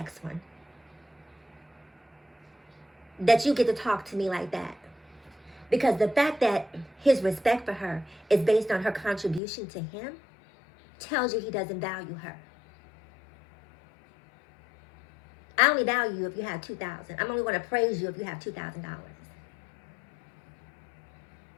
one, that you get to talk to me like that. Because the fact that his respect for her is based on her contribution to him tells you he doesn't value her. I only value you if you have $2,000. I'm only going to praise you if you have $2,000.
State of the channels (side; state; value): right; drops out; at 9.4 s